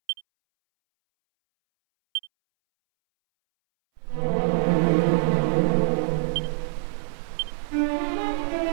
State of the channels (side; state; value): left; silent; 62 dB below the other